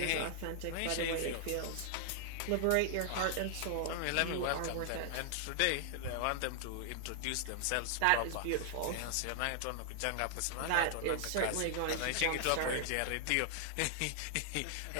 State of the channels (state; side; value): different; both; correlation 0.00